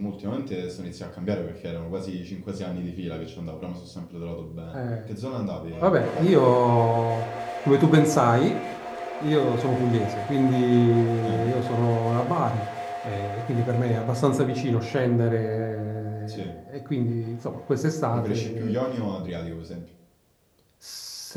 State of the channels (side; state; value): both; identical; correlation 1.00